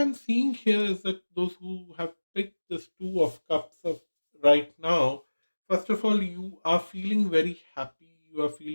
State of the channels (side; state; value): both; inverted; correlation -1.00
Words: seeing here is that those who have picked this Two of Cups of right now, first of all, you are feeling very happy, you are